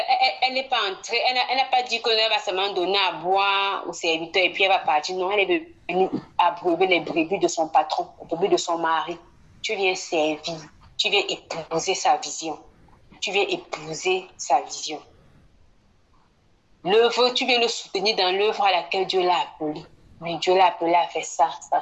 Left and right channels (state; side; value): identical; both; correlation 1.00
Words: elle n'est pas entrée, elle n'a pas dit qu'elle va seulement donner à boire au serviteur et puis elle va partir. Non, elle est venue abreuver les brebis de son patron, les brebis de son mari. Tu viens servir, tu viens épouser sa vision. Tu viens épouser sa vision. L'œuvre, tu viens le soutenir dans l'œuvre à laquelle Dieu l'a appelé. Mais Dieu l'a appelé à faire ça, ça,